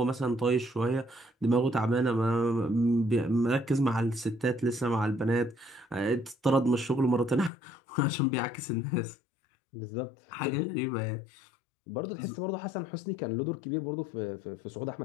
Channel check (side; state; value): right; drops out; at 7.5 s